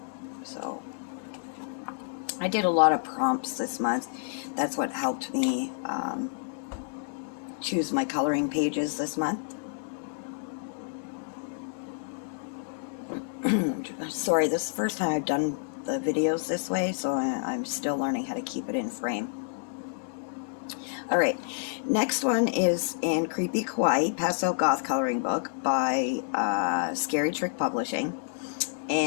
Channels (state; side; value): silent; right; digital silence